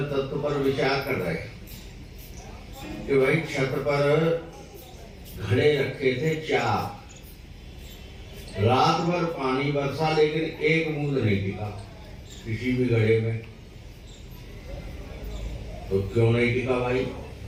तत्व पर विचार कर रहे हैं कि भाई छत पर घड़े रखे थे 4, रात भर पानी बरसा लेकिन एक बूंद नहीं टिका किसी भी घड़े में। तो क्यों नहीं टिका भाई?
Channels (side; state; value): both; identical; correlation 1.00